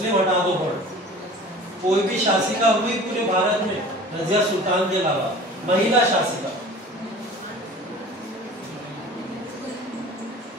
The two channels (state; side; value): normal; both; correlation 0.42